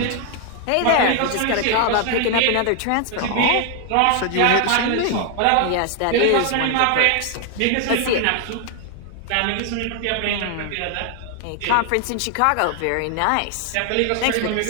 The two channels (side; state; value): both; different; correlation 0.00